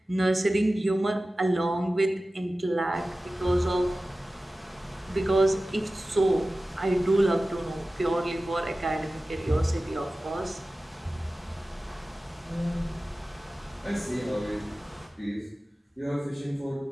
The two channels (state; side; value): normal; both; correlation 0.96